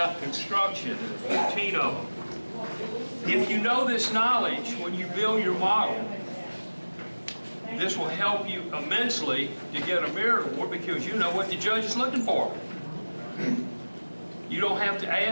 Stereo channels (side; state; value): both; inverted; correlation -1.00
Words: construction, 14 of them. If you know this knowledge, when you build your model, this will help you immensely to get a merit award, because you know what the judge is looking for. You don't have to